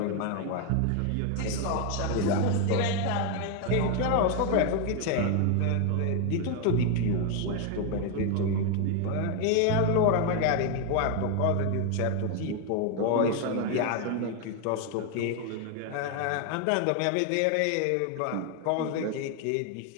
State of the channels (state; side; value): different; both; correlation 0.01